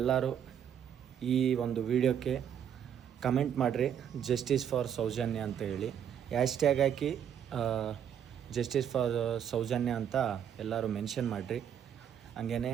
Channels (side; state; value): left; quieter; 9.0 dB